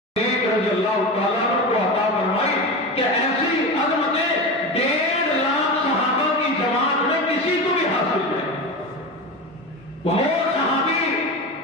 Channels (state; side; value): normal; both; correlation 0.24